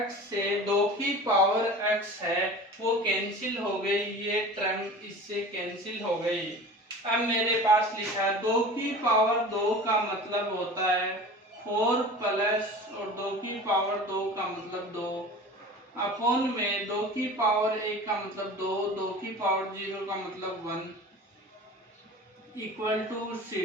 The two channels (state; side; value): normal; both; correlation 0.38